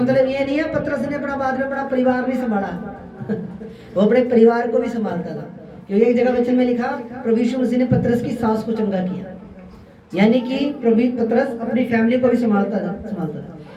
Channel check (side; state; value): both; identical; correlation 1.00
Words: ये नहीं है पतरस ने अपना बाद में अपना परिवार नहीं संभाला वो अपने परिवार को भी संभालता था, क्योंकि एक जगह वचन में लिखा प्रभु यीशु मसीह ने पतरस की सास को चंगा किया, यानी कि प्रभु पतरस अपनी फैमिली को भी संभालता था।